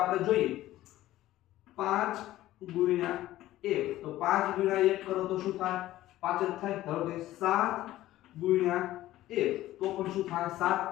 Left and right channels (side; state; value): right; quieter; 15.1 dB